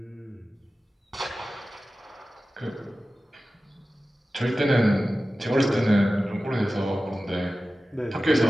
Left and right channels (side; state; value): both; normal; correlation 0.95